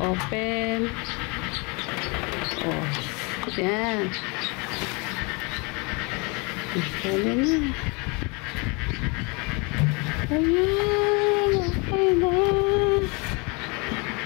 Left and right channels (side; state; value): right; quieter; 30.1 dB